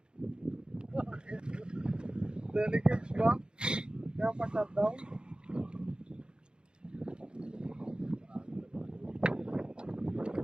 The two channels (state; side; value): late; left; 0.050 ms